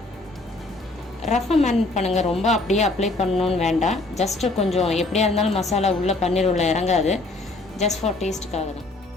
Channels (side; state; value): right; quieter; 3.0 dB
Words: ரஃபாக மேரினேட் பண்ணுங்கள், ரொம்ப அப்படியே அப்ளை பண்ணணுன்னு வேண்டாம். ஜஸ்ட்டு கொஞ்சம் எப்படியா இருந்தாலும் மசாலா உள்ளே பன்னீர் உள்ளே இறங்காது, ஜஸ்ட் ஃபார் டேஸ்ட்டுக்காக தான்.